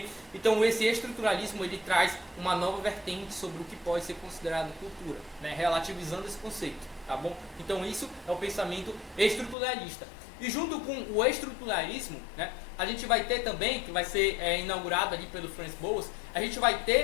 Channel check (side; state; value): right; drops out; at 9.6 s